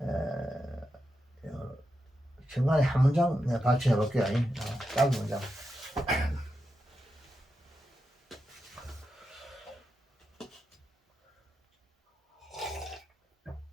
중간에 한 문장 발표해 볼게요. 짧은 문장.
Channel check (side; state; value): both; normal; correlation 0.88